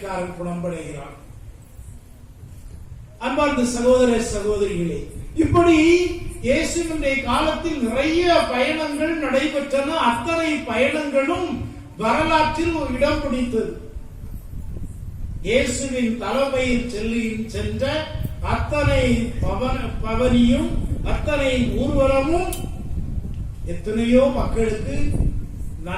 குணமடைகிறான். அன்பார்ந்த சகோதர சகோதரிகளே, இப்படி இயேசுவினுடைய காலத்தில் நிறைய பயணங்கள் நடைபெற்றன. அத்தனை பயணங்களும் வரலாற்றில் ஒரு இடம் பிடித்தது. இயேசுவின் தலைமையில் சென்ற அத்தனை பவனியும் அத்தனை ஊர்வலமும் எத்தனையோ மக்களுக்கு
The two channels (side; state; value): both; identical; correlation 1.00